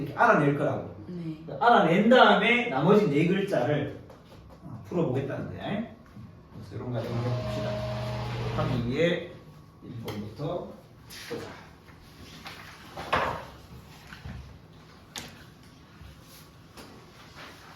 알아낼 거라고. 네. 알아낸 다음에 나머지 네 글자를 풀어보겠다는 거야. 그래서 이런 과정을 해봅시다. 하기 위해 1번부터 보자.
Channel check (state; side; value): identical; both; correlation 1.00